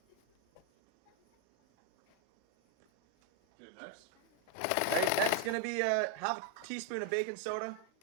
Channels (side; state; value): both; different; correlation 0.01